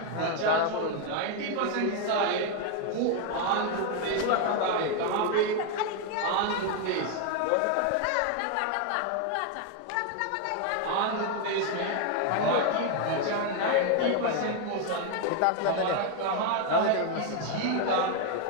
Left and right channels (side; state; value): both; different; correlation 0.01